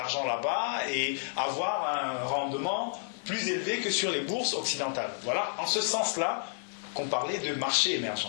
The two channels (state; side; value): silent; right; digital silence